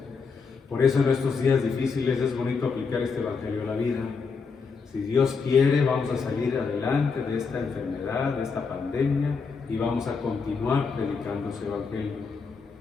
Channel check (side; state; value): right; quieter; 5.1 dB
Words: Por eso en estos días difíciles es bonito aplicar este Evangelio a la vida. Si Dios quiere, vamos a salir adelante de esta enfermedad, de esta pandemia, y vamos a continuar predicando ese Evangelio.